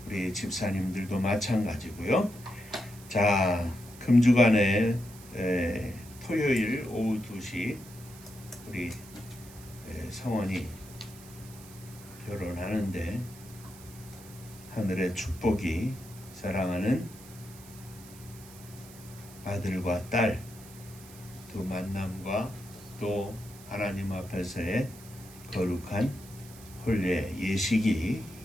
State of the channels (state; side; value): noise; right; hiss, 19 dB below the sound